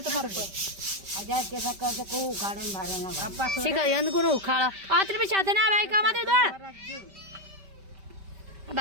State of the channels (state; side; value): late; left; 5.1 ms